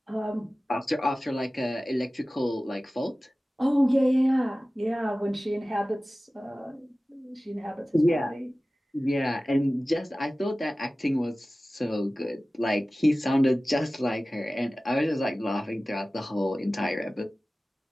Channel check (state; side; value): normal; both; correlation 0.97